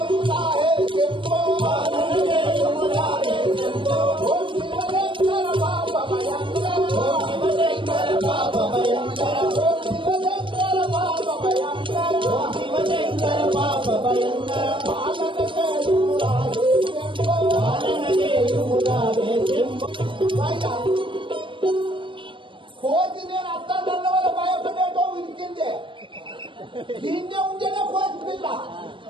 కోతి నేను అత్తాన్న వల్ల భయపడేటో విరికిందే. దీన్నే ఉంటేనే కోతి పిల్ల.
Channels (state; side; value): late; left; 0.24 ms